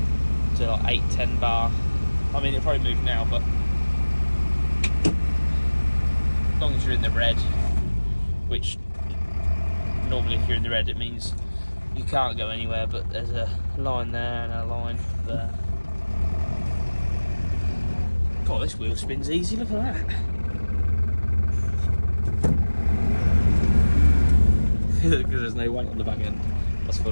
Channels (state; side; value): inverted; both; correlation -1.00